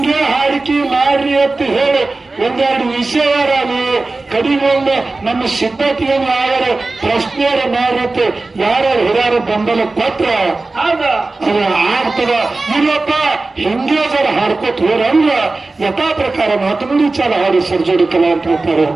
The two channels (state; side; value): quieter; left; 3.4 dB